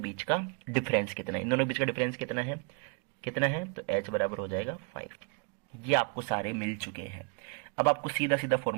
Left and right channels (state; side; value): quieter; left; 35.4 dB